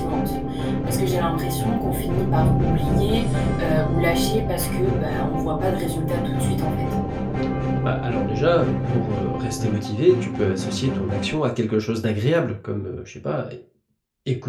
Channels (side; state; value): both; identical; correlation 1.00